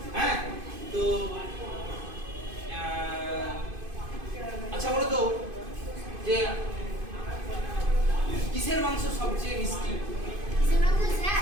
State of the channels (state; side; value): late; left; 2.5 ms